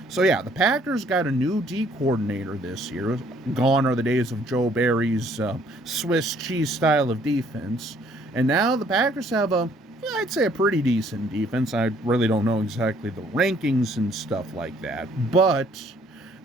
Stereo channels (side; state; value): both; normal; correlation 0.62